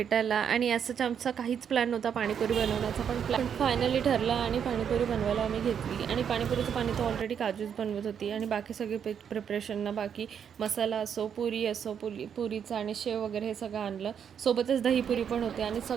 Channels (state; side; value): quieter; left; 8.0 dB